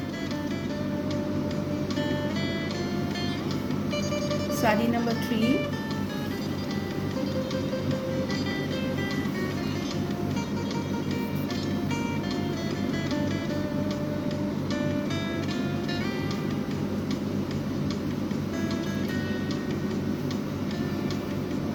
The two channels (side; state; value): both; identical; correlation 1.00